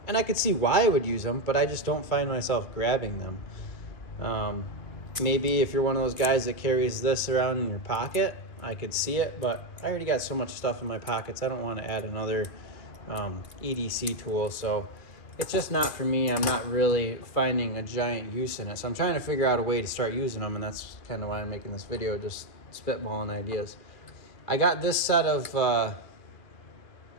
and I could see why I would use them, but I just don't find myself grabbing them. Maybe if you're one of those guys that carries this around in your pocket, I could see it, but I already got so much stuff in my pockets. I don't want to add another EDC tool, so it's just not for me. I'm not really finding a giant use in it, so I'm trying to figure out a way to start using them, and that's kind of why I'm making this video, just spitballing ideas. I got this set of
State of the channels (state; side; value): late; right; 2.4 ms